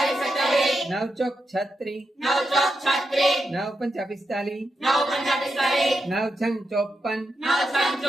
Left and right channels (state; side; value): normal; both; correlation 0.86